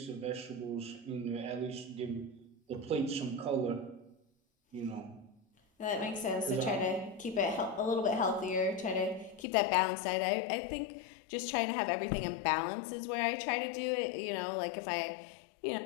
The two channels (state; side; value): drops out; right; at 9.5 s